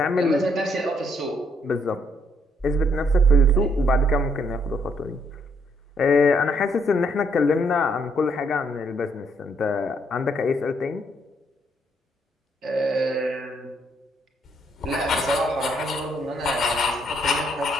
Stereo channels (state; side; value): normal; both; correlation 0.71